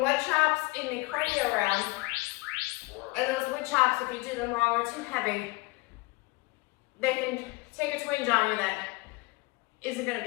wood chops in the cardio round, and those wood chops, if you do them wrong or too heavy, they can take a twinge on you that isn't going to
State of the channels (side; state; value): right; quieter; 24.2 dB